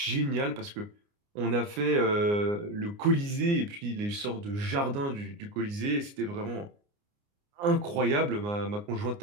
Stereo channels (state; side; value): late; left; 29 ms